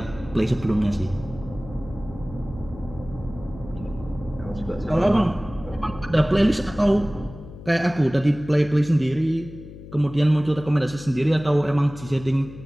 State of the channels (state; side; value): noise; left; hum, 15 dB below the sound